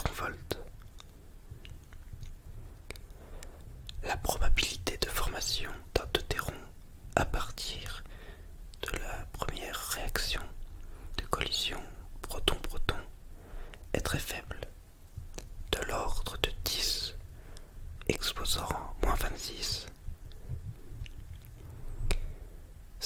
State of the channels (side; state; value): both; identical; correlation 1.00